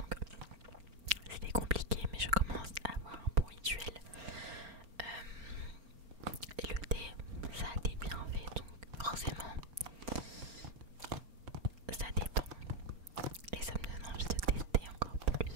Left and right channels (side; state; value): left; late; 4.4 ms